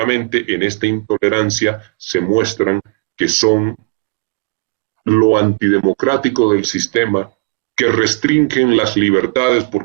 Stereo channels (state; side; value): quieter; left; 31.3 dB